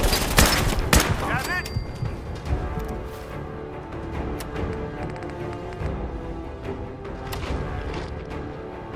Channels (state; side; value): identical; both; correlation 1.00